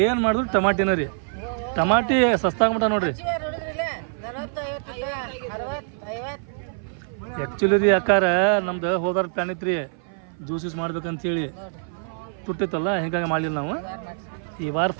ಏನು ಮಾಡಿದ್ರು ಟಮಾಟಿನ ರೀ. ಟಮಾಟಿ ಸಸ್ತಾಗ್ಬಿಟ್ಟ ನೋಡ್ರಿ. ಆ್ಯಕ್ಚುಲಿ ರೀ ಅಕ್ಕಾರ ನಮ್ದು ಹೋದಾರ ಪ್ಲ್ಯಾನ್ ಐತ್ರಿ ಜ್ಯೂಸ್ ಯೂಸ್ ಮಾಡ್ಬೇಕಂತೇಳಿ. ತುಟ್ಟಿತ್ತಲ್ಲ, ಹಿಂಗಾಗಿ ಮಾಡಲಿಲ್ಲ ನಾವು. ಈ ವಾರ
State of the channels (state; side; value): silent; left; 58 dB below the other